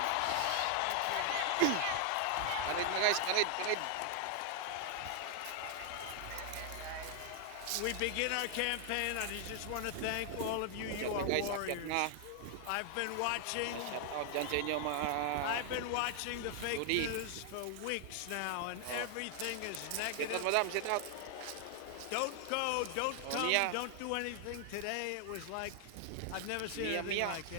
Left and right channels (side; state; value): both; different; correlation 0.00